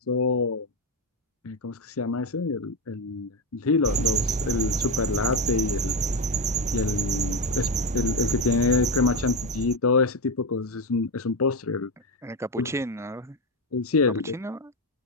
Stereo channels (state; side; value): normal; both; correlation 0.12